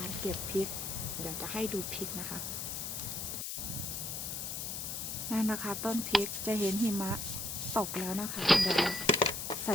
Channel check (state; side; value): noise; left; hiss, 4 dB below the sound